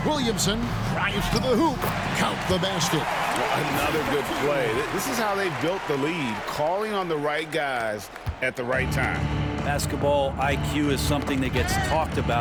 Williamson. Drives to the hoop. Count the basket. Another good play. This is how they built the lead, calling on the right guys at the right time. Basketball IQ is something that gets talked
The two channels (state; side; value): identical; both; correlation 1.00